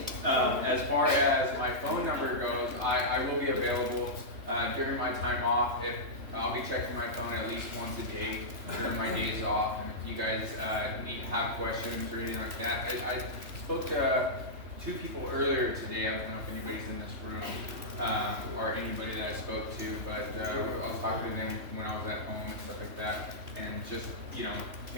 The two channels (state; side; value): late; left; 3.3 ms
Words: As far as my phone number goes, I will be available during my time off. I'll be checking my phone at least once a day during my days off. And if you guys have questions or anything like that, I spoke to two people earlier today. I don't know if anybody's in this room or anybody that I spoke to, but I was talking to them when I was at home and stuff like that, and just